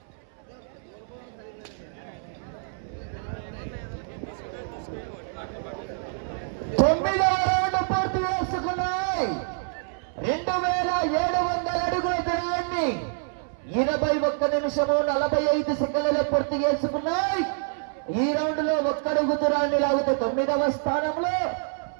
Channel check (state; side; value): silent; left; 60 dB below the other